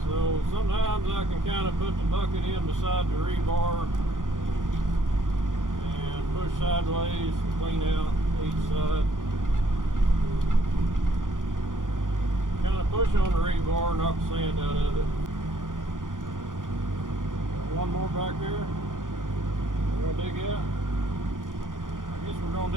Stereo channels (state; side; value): late; left; 0.89 ms